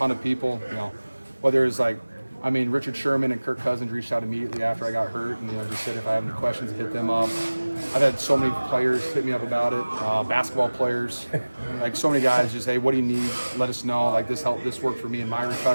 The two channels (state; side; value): inverted; both; correlation -1.00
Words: of people. Whether it's Richard Sherman and Kirk Cousins reached out immediately after I got hurt and just said if I have any questions, hit them up. I've had so many players hit me up about it. Basketball players, so many guys just, hey, what do you need? Let us know. This worked for me in my